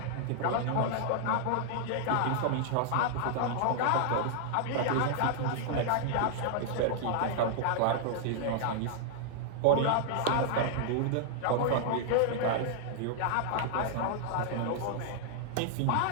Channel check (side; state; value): both; different; correlation -0.01